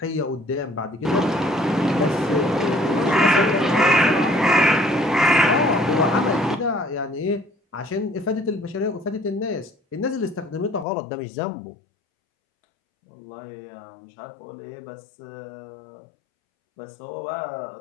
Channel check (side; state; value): right; drops out; at 10.9 s